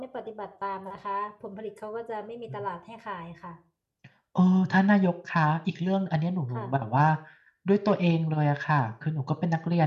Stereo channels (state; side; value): identical; both; correlation 1.00